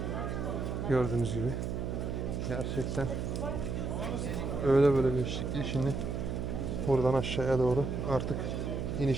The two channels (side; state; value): right; noise; hum, 2 dB below the sound